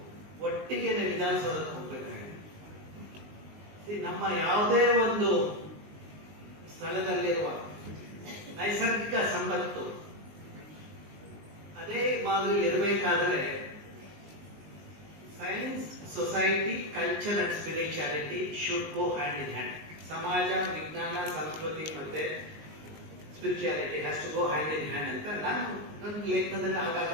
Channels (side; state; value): left; late; 19 ms